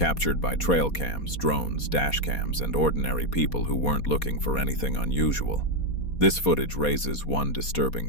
by trail cams, drones, dash cams, and ordinary people who weren't looking for anything unusual. This footage raises one disturbing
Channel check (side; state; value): right; late; 4.2 ms